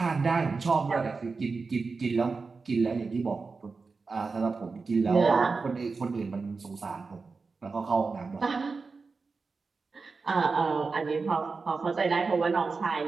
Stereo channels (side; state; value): left; quieter; 4.4 dB